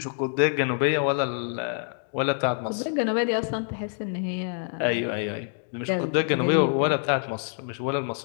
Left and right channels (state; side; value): silent; right; 59 dB below the other